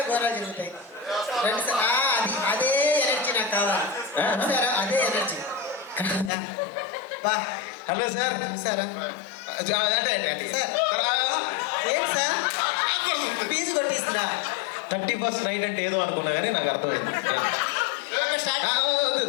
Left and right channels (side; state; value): right; drops out; at 6.3 s